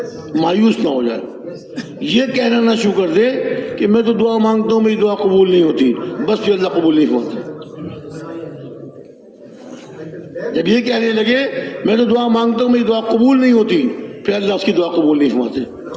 مایوس نہ ہو جائے، یہ کہنا نہ شروع کر دے کہ میں تو دعا مانگتا ہوں میری دعا قبول نہیں ہوتی، بس پھر اللہ قبول نہیں فرماتے. جب یہ کہنے لگے میں تو دعا مانگتا ہوں میری دعا قبول نہیں ہوتی، پھر اللہ اس کی دعا قبول نہیں فرماتے.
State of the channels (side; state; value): both; identical; correlation 1.00